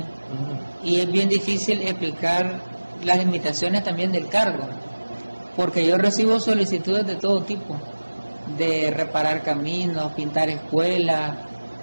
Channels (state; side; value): inverted; both; correlation -1.00